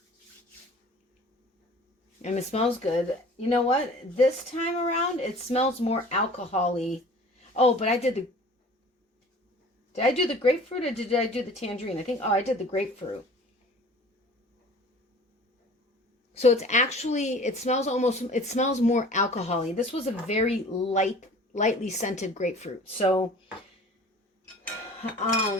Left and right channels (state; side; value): normal; both; correlation 0.46